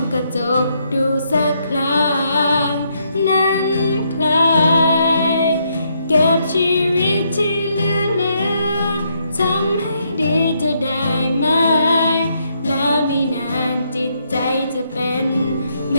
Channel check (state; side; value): inverted; both; correlation -0.75